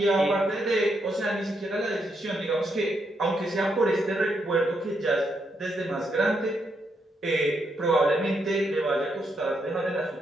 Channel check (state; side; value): normal; both; correlation 0.79